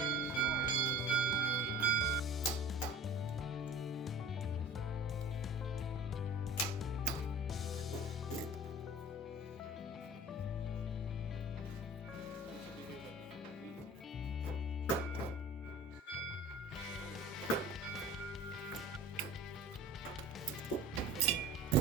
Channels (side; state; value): both; normal; correlation 0.41